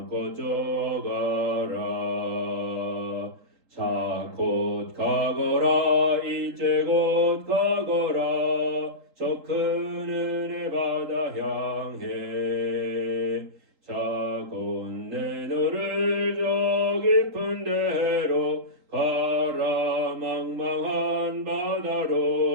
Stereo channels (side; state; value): left; late; 3.8 ms